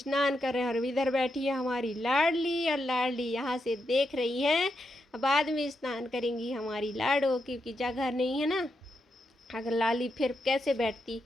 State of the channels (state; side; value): normal; both; correlation 0.84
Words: कर रहे हैं। और इधर बैठी है हमारी लाडली, और लाडली यहाँ से देख रही है। बाद में स्नान करेंगी हमारी लाडो, क्योंकि जगह नहीं है ना, अगर लाली फिर कैसे बैठती